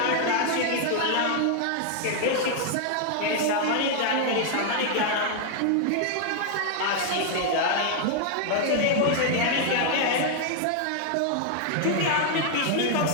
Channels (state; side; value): different; both; correlation 0.00